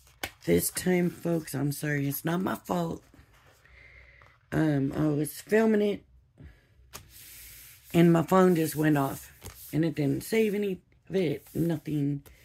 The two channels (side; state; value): both; identical; correlation 1.00